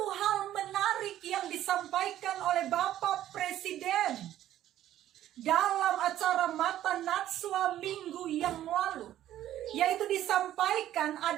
hal menarik yang disampaikan oleh Bapak Presiden dalam acara Mata Najwa minggu yang lalu, yaitu disampaikan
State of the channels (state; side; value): quieter; left; 12.6 dB